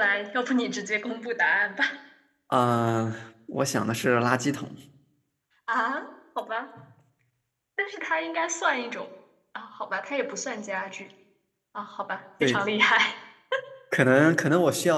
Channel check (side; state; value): both; identical; correlation 1.00